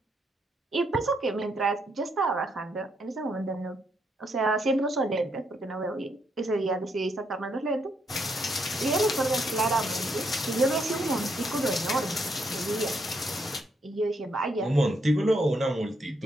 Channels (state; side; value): normal; both; correlation 0.76